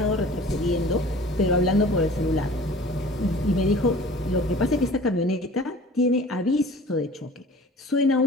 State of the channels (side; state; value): both; normal; correlation 0.45